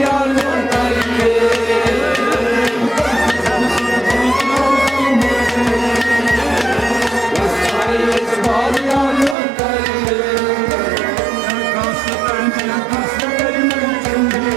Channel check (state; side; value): drops out; left; at 9.3 s